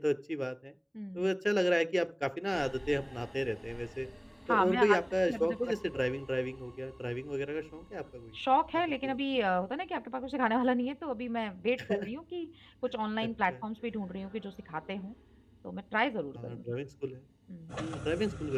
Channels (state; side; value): identical; both; correlation 1.00